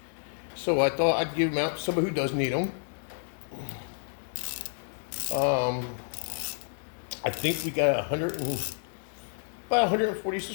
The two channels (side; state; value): right; silent; 58 dB below the other